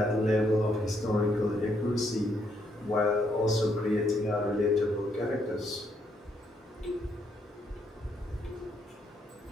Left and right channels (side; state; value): both; normal; correlation 0.74